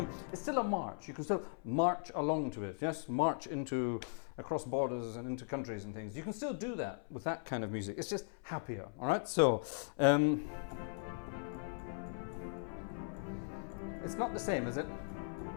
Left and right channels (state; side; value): silent; right; 52 dB below the other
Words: still a march. You can still march along to it, yes? March across borders and into countries and things. You can still do that with that kind of music. It's just happier, all right? So, it's not the same, is it?